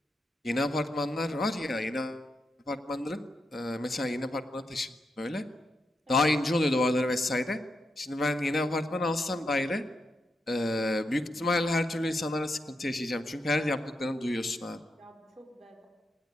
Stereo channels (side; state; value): both; normal; correlation 0.84